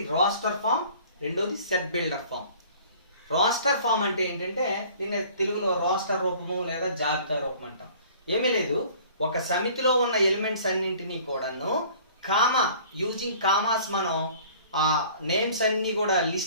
రోస్టర్ ఫామ్, రెండోది set builder form. Roster form అంటే ఏంటంటే దీన్ని తెలుగులో రోస్టర్ రూపము లేదా జాబితా రూపం అంటాం. ఏమీ లేదు, ఒక సమితిలో ఉన్న ఎలిమెంట్స్ అన్నింటినీ కూడాను యూజింగ్ కామాస్ మనం నేమ్స్ అన్ని కూడా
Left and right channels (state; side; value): inverted; both; correlation -0.50